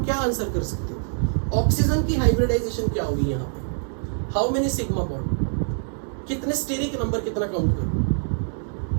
क्या आंसर कर सकते हो? ऑक्सीजन की हाइब्रिडाइजेशन क्या होगी यहां पे? हाउ मेनी सिग्मा बॉन्ड, कितने स्टेरिक नंबर, कितना काउंट करूं?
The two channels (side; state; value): left; silent; digital silence